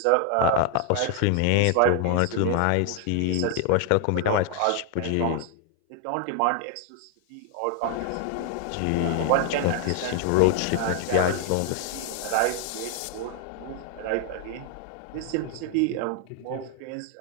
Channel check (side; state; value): both; different; correlation 0.00